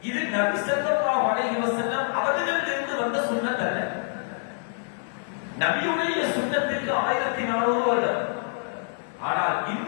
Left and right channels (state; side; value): silent; right; digital silence